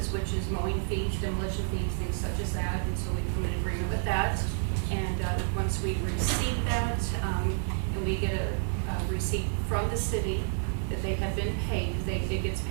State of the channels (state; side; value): silent; left; digital silence